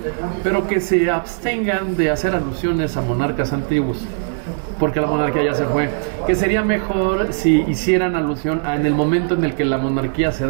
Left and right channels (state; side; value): silent; left; digital silence